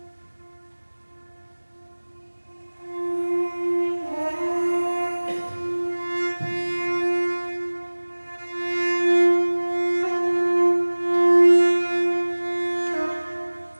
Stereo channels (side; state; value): both; inverted; correlation -1.00